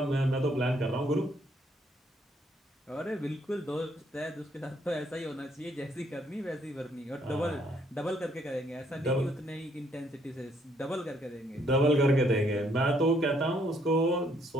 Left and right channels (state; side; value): normal; both; correlation 0.69